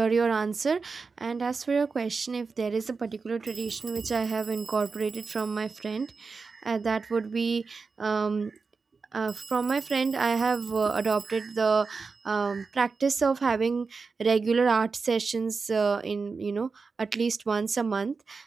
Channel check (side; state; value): left; quieter; 4.6 dB